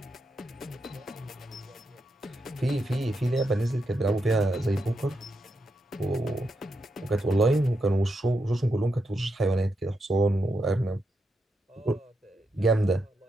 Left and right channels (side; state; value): both; normal; correlation 0.84